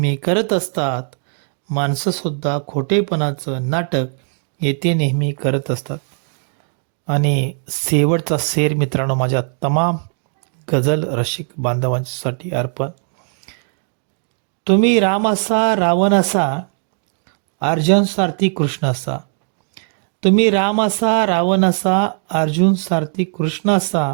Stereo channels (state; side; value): silent; left; 55 dB below the other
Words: करत असतात. माणसंसुद्धा खोटेपणाचं नाटक येथे नेहमी करत असतात. आणि शेवटचा शेर मित्रांनो, माझ्या तमाम गझल रसिक बांधवांसाठी अर्पण. तुम्ही राम असा रावण असा, अर्जुन सारथी कृष्ण असा. तुम्ही राम असा रावण असा, अर्जुन सारथी कृष्ण